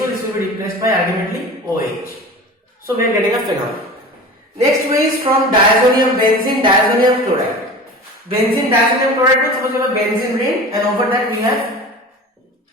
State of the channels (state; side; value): normal; both; correlation 0.35